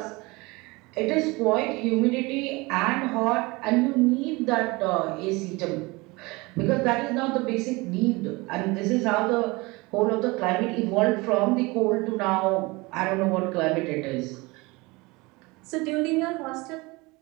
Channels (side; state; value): left; quieter; 24.1 dB